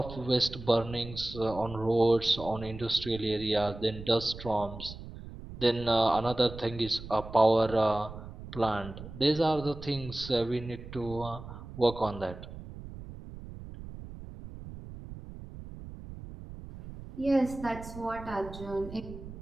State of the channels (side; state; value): right; noise; rumble, 13 dB below the sound